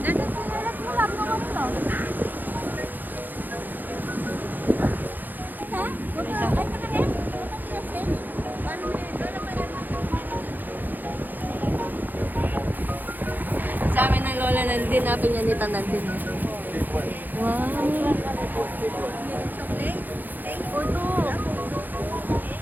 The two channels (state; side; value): late; left; 0.087 ms